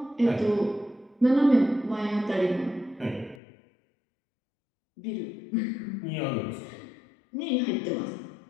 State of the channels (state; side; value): drops out; right; at 3.4 s